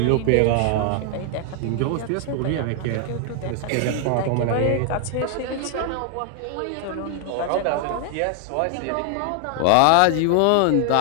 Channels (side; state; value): both; different; correlation 0.00